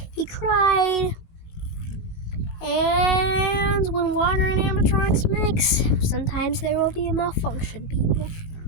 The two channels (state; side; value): late; right; 18 ms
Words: He cried, and when water and animatronics mix, sometimes there will be a malfunction, people.